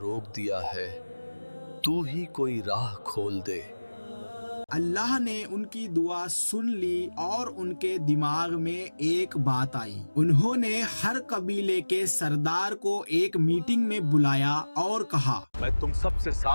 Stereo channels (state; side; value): inverted; both; correlation -1.00